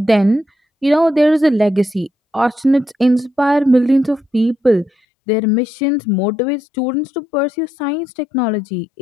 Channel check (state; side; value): drops out; right; at 4.9 s